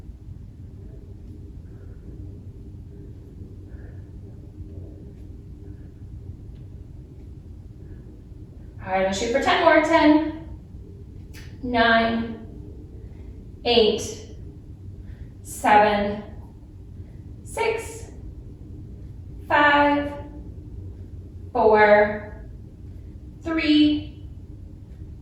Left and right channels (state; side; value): identical; both; correlation 1.00